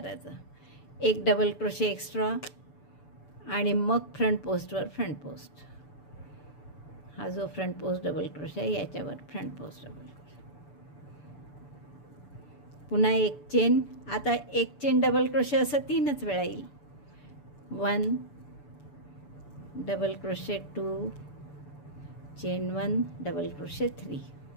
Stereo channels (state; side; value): late; right; 6.9 ms